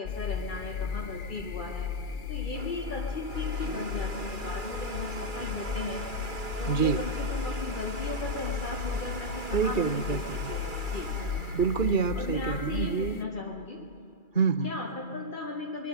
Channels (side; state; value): right; late; 2.3 ms